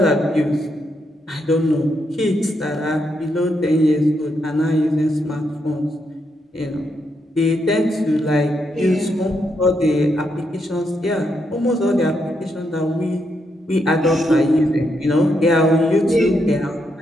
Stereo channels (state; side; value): normal; both; correlation 0.80